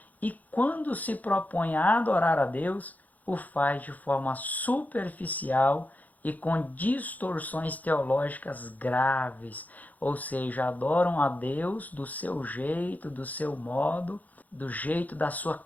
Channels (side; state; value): right; late; 0.079 ms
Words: e quando se propõe a adorar a Deus, o faz de forma superficial e com distorções teológicas graves, ou seja, adoram a Deus do seu jeito, do seu modo, do jeito da sua